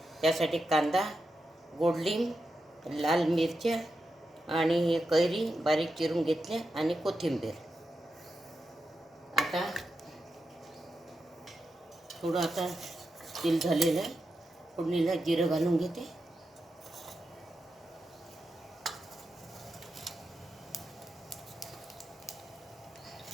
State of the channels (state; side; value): normal; both; correlation 0.88